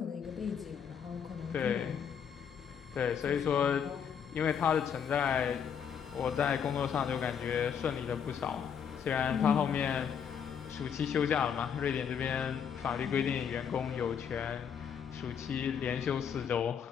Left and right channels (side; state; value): right; quieter; 7.6 dB